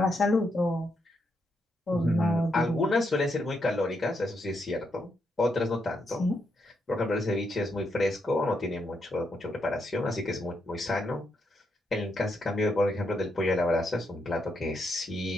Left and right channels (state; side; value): normal; both; correlation 0.80